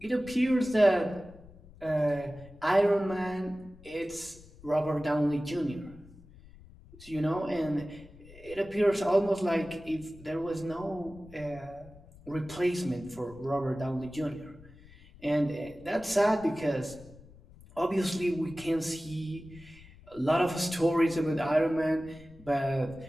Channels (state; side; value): noise; left; rumble, 22 dB below the sound